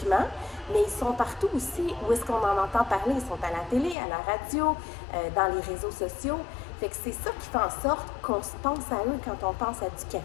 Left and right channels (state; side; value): drops out; right; at 4.0 s